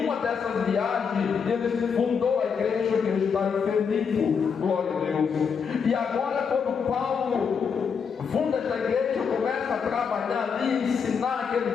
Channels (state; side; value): quieter; right; 6.3 dB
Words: uma dessas viagens ele fundou a igreja que está em Filipe, glória a Deus. E agora, quando Paulo funda esta igreja, começa a trabalhar ali, ensinar